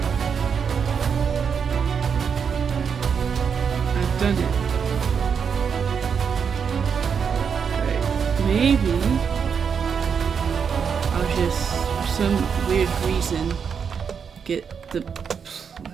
I've done it. Maybe I'll just some weird reason get the...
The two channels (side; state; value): left; quieter; 6.7 dB